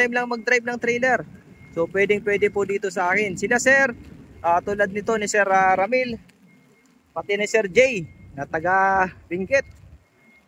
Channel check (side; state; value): both; identical; correlation 1.00